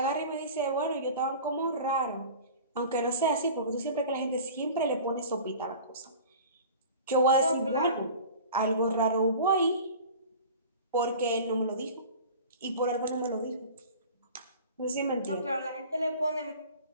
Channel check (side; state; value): both; inverted; correlation -0.40